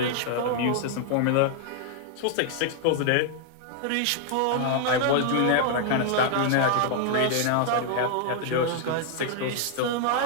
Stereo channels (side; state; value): both; different; correlation 0.00